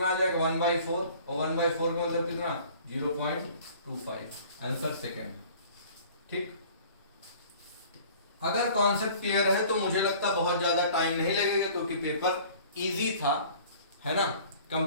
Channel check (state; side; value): inverted; both; correlation -0.49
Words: आ जाएगा 1/4, और 1/4 का मतलब कितना 0.25। Answer second. ठीक, अगर कॉन्सेप्ट क्लियर है तो मुझे लगता बहुत ज्यादा टाइम नहीं लगेगा, क्योंकि पेपर इजी था, है ना,